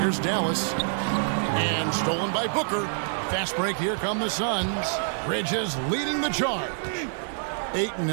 Dallas. And stolen by Booker. Fast break. Here come the Suns. Bridges leading the charge. Ayton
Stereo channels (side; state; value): left; silent; digital silence